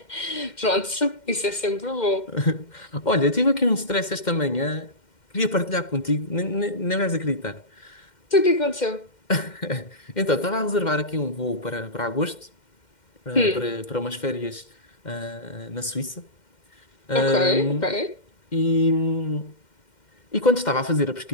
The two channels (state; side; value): late; right; 2.1 ms